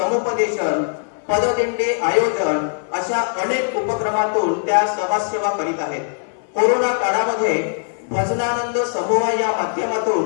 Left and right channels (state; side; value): silent; right; 58 dB below the other